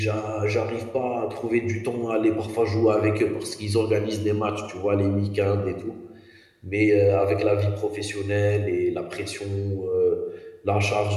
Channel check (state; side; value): identical; both; correlation 1.00